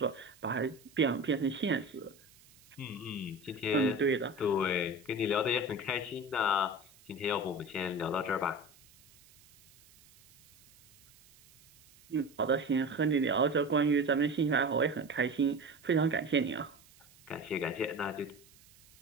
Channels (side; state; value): right; noise; hiss, 26 dB below the sound